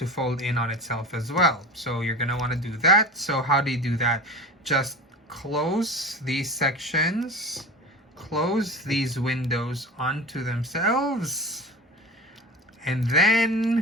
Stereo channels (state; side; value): normal; both; correlation 0.32